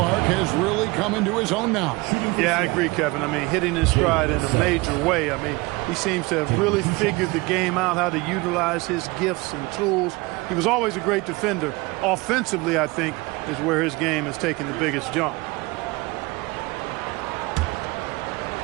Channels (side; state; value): left; quieter; 23.8 dB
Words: has really come into his own now. Yeah, I agree, Kevin. I mean, hitting his stride in a major way. I mean, he seems to have really figured the game out, how to utilize his gifts and tools. He was always a great defender. Offensively, I think, is where his game has taken the biggest jump.